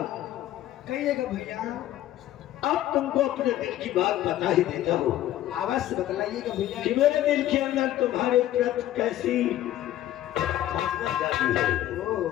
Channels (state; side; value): quieter; right; 13.2 dB